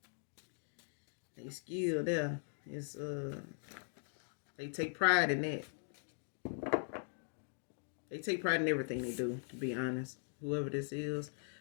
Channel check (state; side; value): silent; right; digital silence